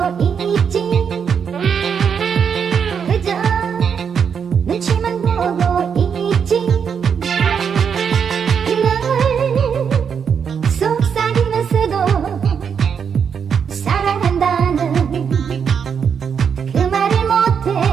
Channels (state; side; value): quieter; left; 7.0 dB